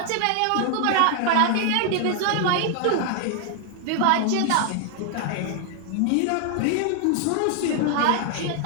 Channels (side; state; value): both; different; correlation 0.00